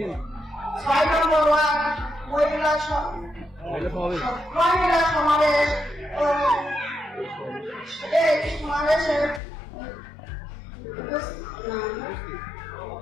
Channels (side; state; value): right; drops out; at 9.4 s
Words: 6 নম্বর word মহিলা সমাবেশ ও এই সমাবেশের